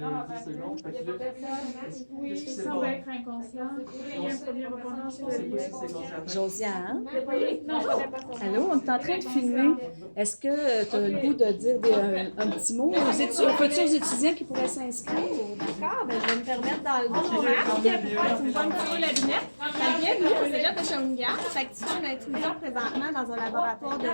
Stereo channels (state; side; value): inverted; both; correlation -1.00